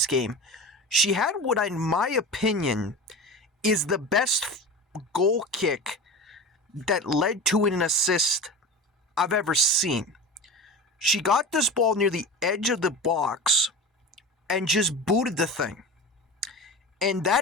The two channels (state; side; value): normal; both; correlation 0.31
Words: game. She had what, in my opinion, is the best goal kick that led to an assist I've ever seen. She got this ball near the edge of the box and just booted the thing. And